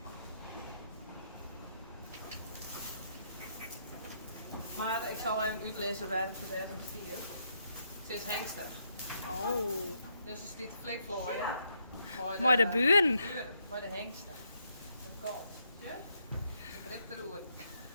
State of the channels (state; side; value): inverted; both; correlation -0.76